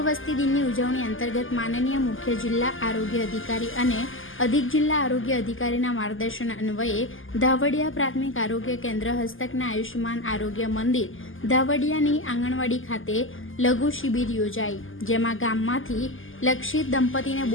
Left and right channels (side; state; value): right; late; 0.58 ms